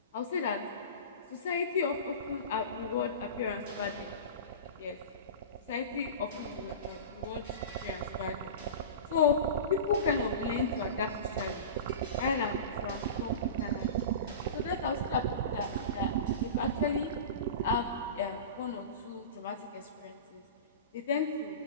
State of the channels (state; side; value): inverted; both; correlation -0.31